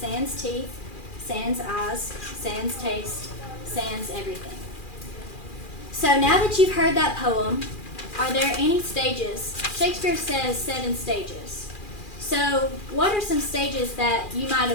teeth, sans eyes, sans taste, sans everything. So now that you've heard that poem, are there any stages? Shakespeare says 7 stages. So what are some stages that you might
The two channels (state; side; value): late; right; 2.4 ms